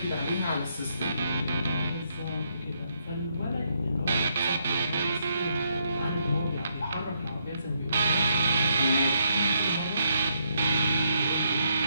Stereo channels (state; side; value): inverted; both; correlation -0.76